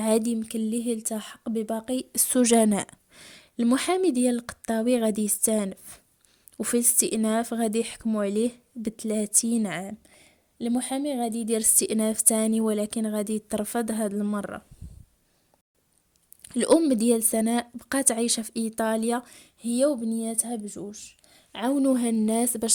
يمكن ليه يلتحق بباقي السجناء. المحامي ديال القطاوي غادي يستانف، وفي الاستئناف غادي يحكموا عليه ب30 عام. المحامي غادي يدير استئناف تاني ولكن غادي يترفض هاد المرة. الأم ديال سناء بقات عايشة في إيطاليا هي وبنياتها بجوج. عاونوها الناس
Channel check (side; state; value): both; identical; correlation 1.00